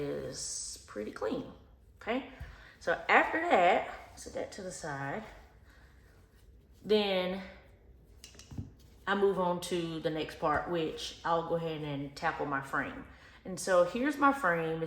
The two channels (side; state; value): both; identical; correlation 1.00